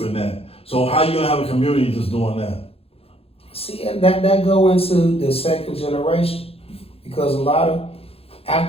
in that. So how you gonna have a community just doing that? See, that go into the second generation because a lot of,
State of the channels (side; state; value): right; late; 0.28 ms